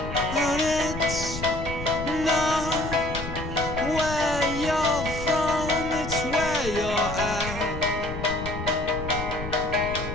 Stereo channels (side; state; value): left; noise; rumble, 7 dB below the sound